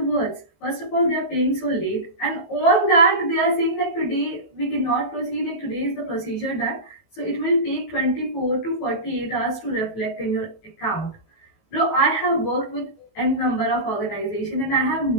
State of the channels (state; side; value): late; right; 18 ms